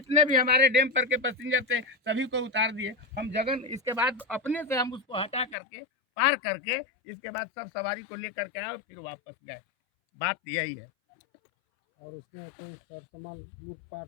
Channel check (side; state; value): right; drops out; at 5.6 s